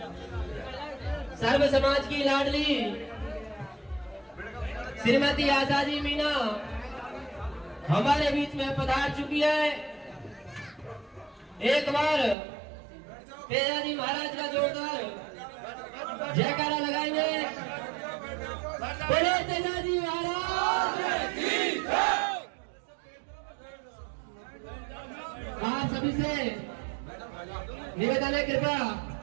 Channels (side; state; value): left; drops out; at 12.4 s